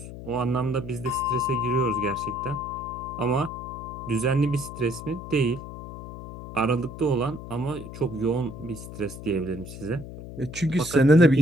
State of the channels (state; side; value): noise; left; hum, 11 dB below the sound